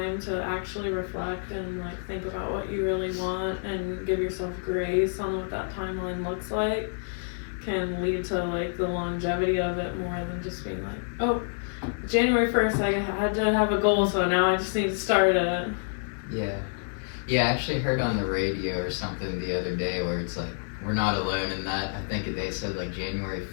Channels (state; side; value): silent; right; digital silence